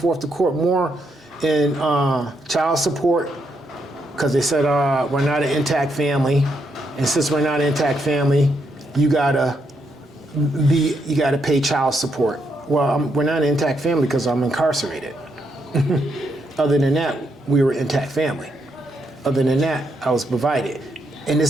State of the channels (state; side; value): normal; both; correlation 0.78